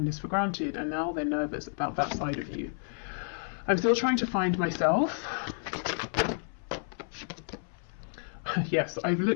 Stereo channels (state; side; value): silent; right; 57 dB below the other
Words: for granted, and now they're nervous about that side of you. I'm still trying to find myself. Yes, I've